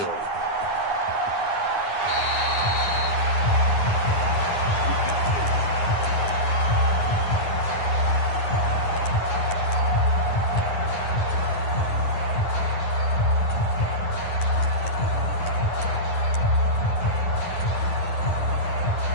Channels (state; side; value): late; right; 9.7 ms